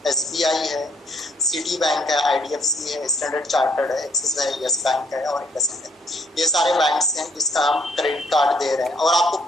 SBI है, सिटी बैंक है, IDFC है, स्टैंडर्ड चार्टर्ड है, एक्सिस है, यस बैंक है और इंडसइंड है। ये सारे बैंक्स हैं जिसका हम क्रेडिट कार्ड दे रहे हैं और आपको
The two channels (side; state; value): both; normal; correlation 0.67